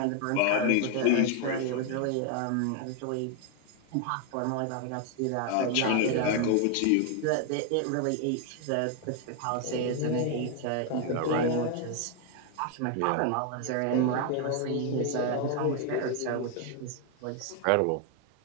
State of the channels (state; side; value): different; both; correlation 0.00